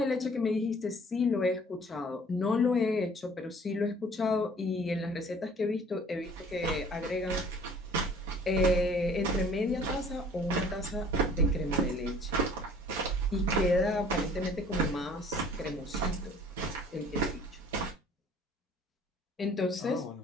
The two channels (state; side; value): normal; both; correlation 0.52